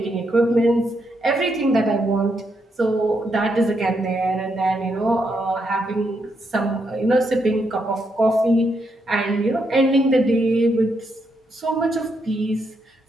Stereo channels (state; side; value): normal; both; correlation 0.79